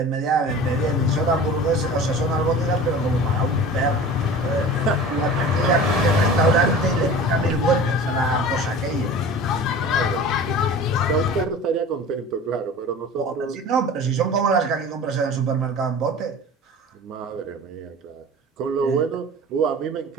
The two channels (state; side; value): normal; both; correlation 0.38